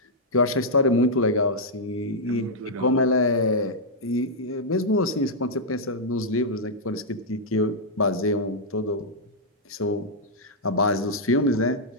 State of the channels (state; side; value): normal; both; correlation -0.06